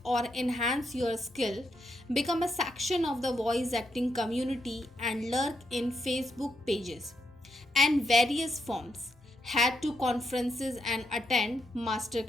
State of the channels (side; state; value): both; normal; correlation 0.80